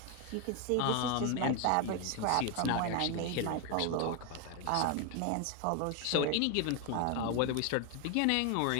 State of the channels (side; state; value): both; different; correlation 0.01